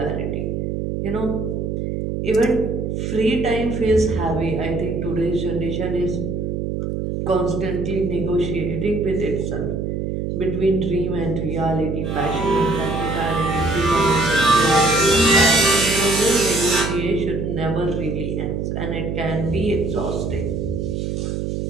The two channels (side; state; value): right; noise; hum, 2 dB below the sound